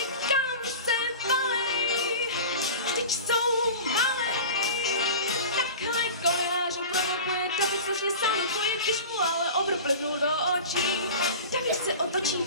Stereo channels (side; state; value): both; inverted; correlation -0.34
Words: kam se valej, vždyť jsou malej. Takhle Goliáš ho provokuje, David strašně salutuje, když mu ale obr plivnul do očí. David se otočí,